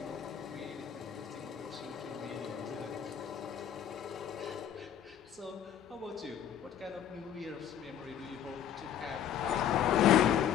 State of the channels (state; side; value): quieter; right; 9.5 dB